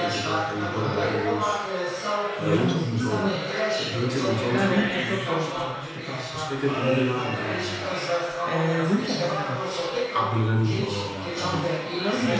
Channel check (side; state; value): both; identical; correlation 1.00